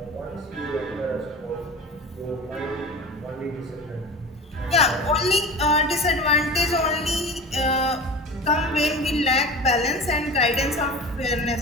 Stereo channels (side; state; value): both; normal; correlation 0.34